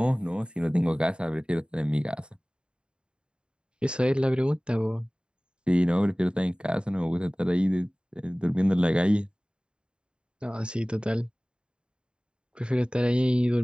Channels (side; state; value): left; late; 0.052 ms